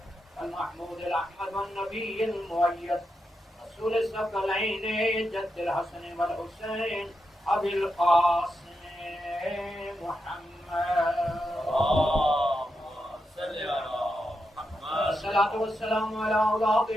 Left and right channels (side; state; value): both; normal; correlation 0.86